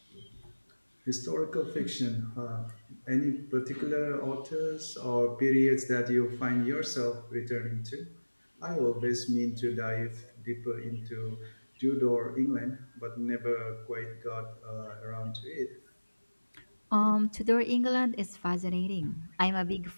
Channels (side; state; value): both; inverted; correlation -1.00